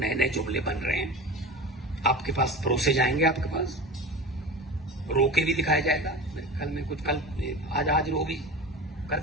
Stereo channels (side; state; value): both; normal; correlation 0.31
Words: नए जुमले बन रहे हैं, आपके पास परोसे जाएंगे, आपके पास रोके भी दिखाया जाएगा। कल में कुछ, कल आज रो भी कर